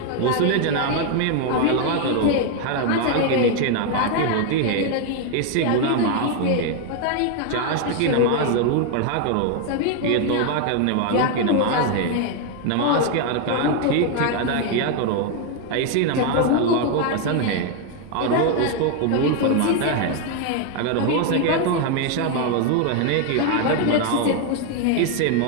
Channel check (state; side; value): different; both; correlation 0.01